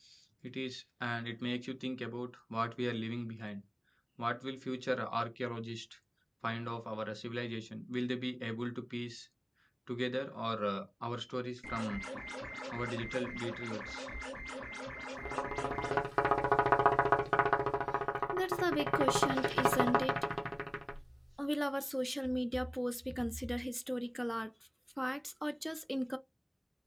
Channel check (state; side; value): identical; both; correlation 1.00